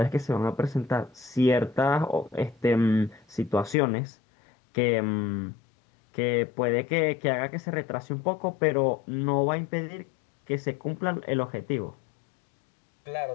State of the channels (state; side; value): drops out; right; at 3.8 s